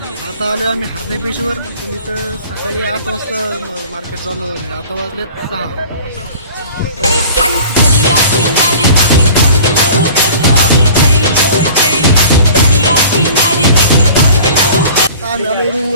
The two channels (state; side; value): inverted; both; correlation -0.44